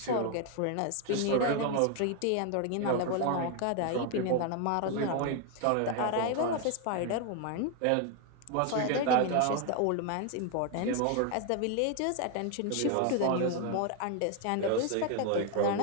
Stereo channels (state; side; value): different; both; correlation 0.01